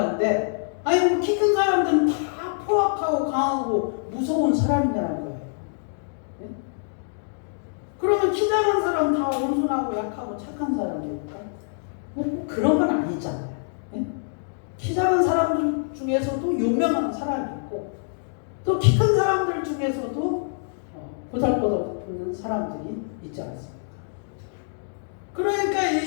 아니 키 큰 사람들은 다 포악하고 강하고 무서운 사람이라는 거예요. 네? 그러면 키 작은 사람 다 온순하고 약하고 착한 사람입니까? 뭐 그런 건 아니잖아요. 예? 키 작은 사람들 중에서도 유명한 사람이 있고 또 키 큰 사람들 중에서도 보잘것없는 사람들이 있지 않습니까? 그러니까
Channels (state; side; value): silent; right; digital silence